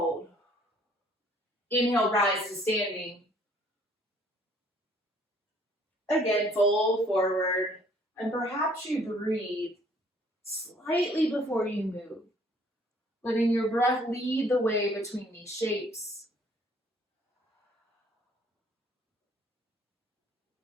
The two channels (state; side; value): normal; both; correlation 0.60